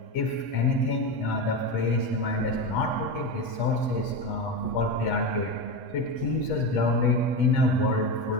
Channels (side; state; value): right; late; 8.2 ms